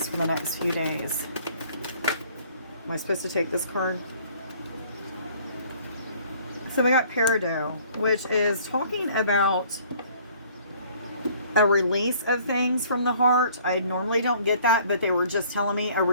for the next few days? Am I supposed to take this card? So we got Peridot, which is talking about a release of things from the heart. I normally don't get that, but they were just telling me a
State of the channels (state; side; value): inverted; both; correlation -0.56